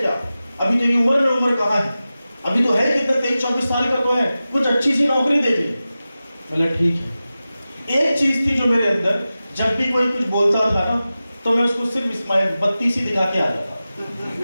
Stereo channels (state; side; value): inverted; both; correlation -0.95